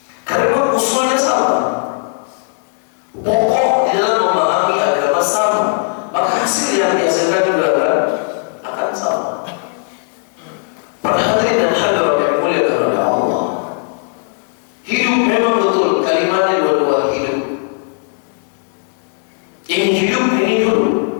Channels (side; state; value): right; silent; 68 dB below the other